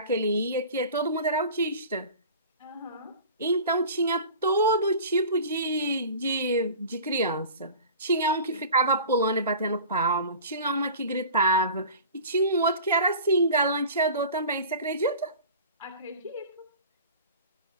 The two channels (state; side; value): inverted; both; correlation -0.39